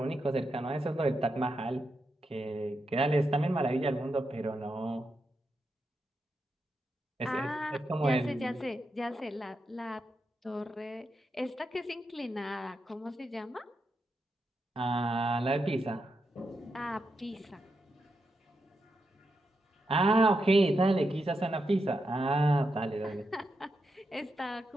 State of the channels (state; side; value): normal; both; correlation 0.85